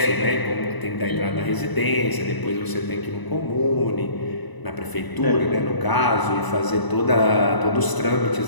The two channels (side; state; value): right; late; 1.0 ms